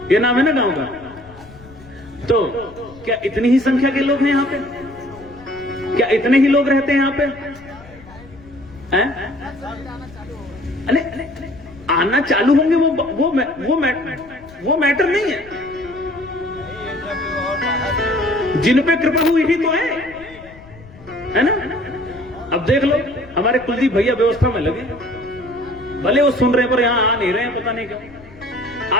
ये नाम है ना गांव का। तो क्या इतनी ही संख्या के लोग हैं यहाँ पे? क्या इतने ही लोग रहते हैं यहाँ पे? अरे आना चालू होंगे, वो मैटर नहीं है। जिन पे कृपा हुई ही तो है ना? अब देख लो, हमारे कुलदीप भैया व्यवस्था में लगे, भले वो सुन रहे हैं पर यहां आ नहीं रहे हैं, पता नहीं क्यों।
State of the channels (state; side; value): noise; left; rumble, 21 dB below the sound